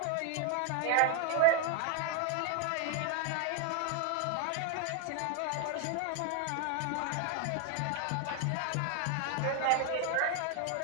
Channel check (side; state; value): both; different; correlation 0.00